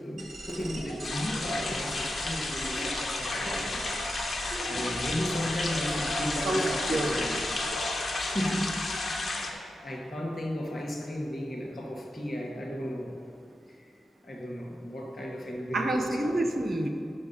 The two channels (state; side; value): normal; both; correlation 0.89